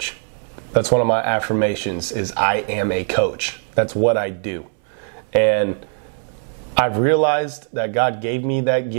That's one of my affirmations, is I am a coach. That's what I do. And I've realized that God gave me that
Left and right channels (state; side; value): silent; left; 65 dB below the other